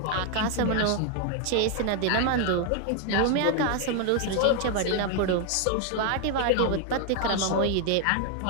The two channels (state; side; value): different; both; correlation 0.00